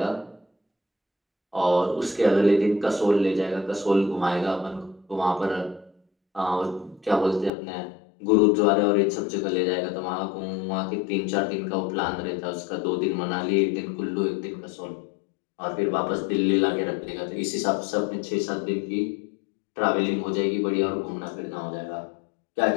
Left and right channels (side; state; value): right; drops out; at 7.5 s